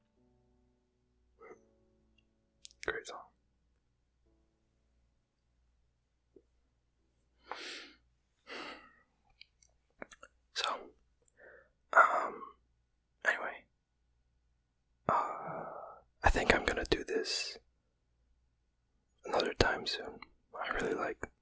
Great song. So, anyway, I think I'm gonna do this another time soon. I really like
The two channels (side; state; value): both; identical; correlation 1.00